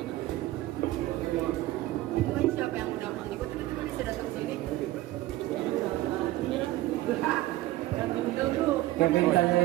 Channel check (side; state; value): left; quieter; 16.7 dB